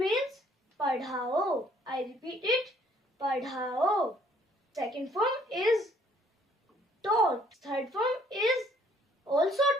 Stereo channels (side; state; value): both; normal; correlation 0.62